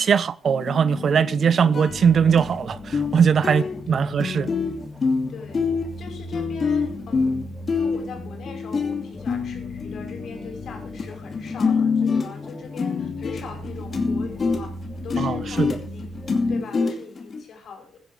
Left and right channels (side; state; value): both; normal; correlation 0.80